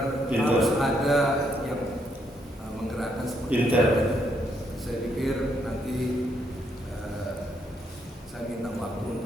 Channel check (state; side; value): normal; both; correlation 0.75